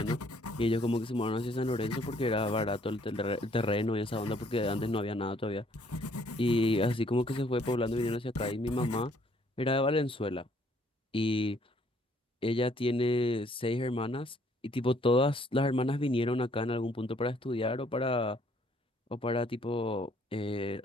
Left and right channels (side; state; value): both; normal; correlation 0.64